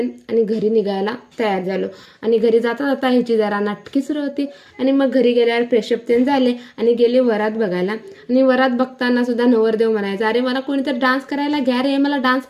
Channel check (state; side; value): identical; both; correlation 1.00